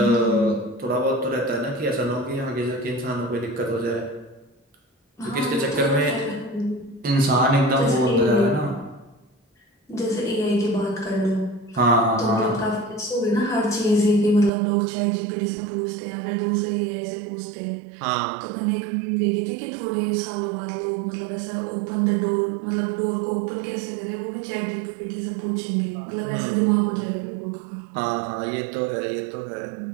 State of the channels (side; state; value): left; drops out; at 14.5 s